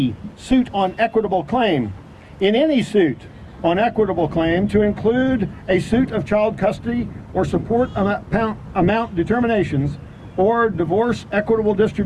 suit on equitable claim. In any suit on equitable claim to include a suit of child custody or support amount determinations or divorce equitable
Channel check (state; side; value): identical; both; correlation 1.00